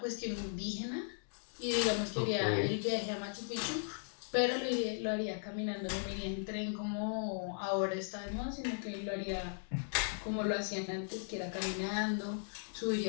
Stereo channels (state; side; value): silent; right; digital silence